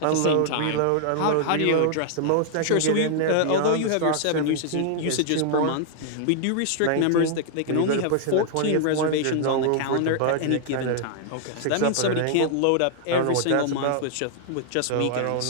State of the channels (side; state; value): both; different; correlation -0.01